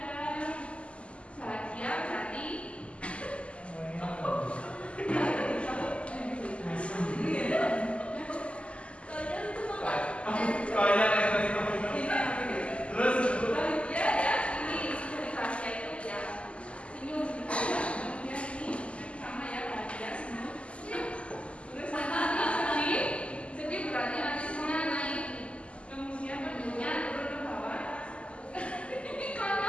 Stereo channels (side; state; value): right; late; 0.057 ms